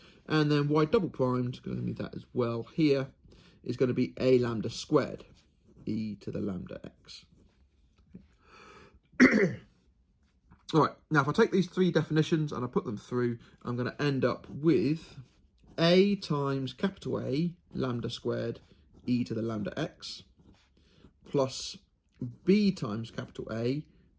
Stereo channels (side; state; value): both; identical; correlation 1.00